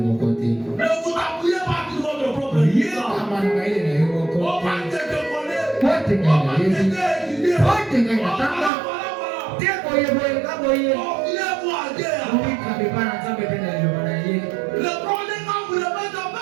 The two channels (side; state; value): left; drops out; at 8.7 s